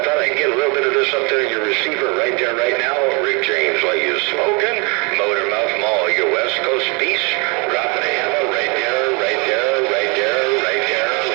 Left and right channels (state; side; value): quieter; left; 31.0 dB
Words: thought I'd get a little bit of this up there in your receiver right there, right now. Rick James, while you're smoking, Motormouth Mall, your West Coast beast, dropping a hammer right there, right there, right there, right there,